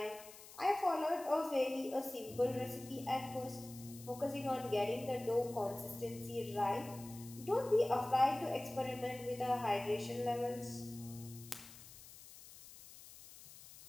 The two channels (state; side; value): noise; left; hiss, 17 dB below the sound